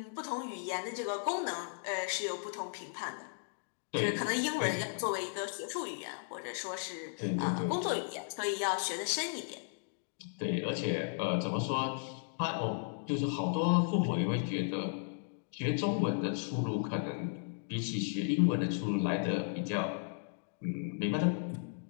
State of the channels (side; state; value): right; silent; digital silence